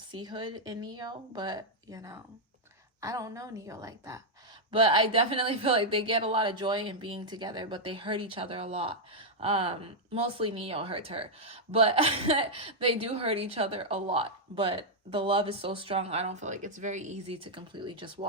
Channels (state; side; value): normal; both; correlation -0.04